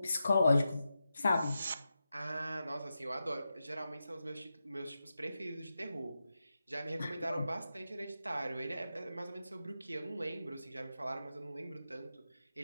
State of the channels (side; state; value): both; inverted; correlation -0.90